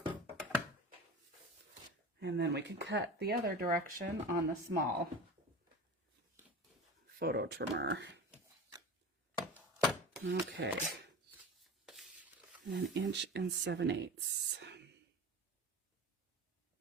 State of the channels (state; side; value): normal; both; correlation 0.32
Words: And then we can cut the other direction on the small photo trimmer. Okay. 1 7/8 inches.